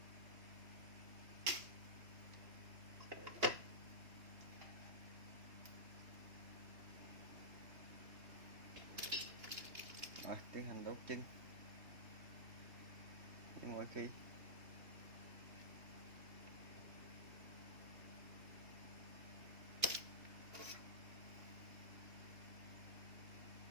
Rồi tiến hành đốt chân như mọi khi.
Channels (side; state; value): left; late; 2.9 ms